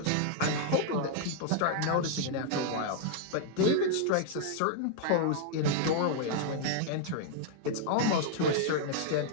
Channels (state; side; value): different; both; correlation -0.01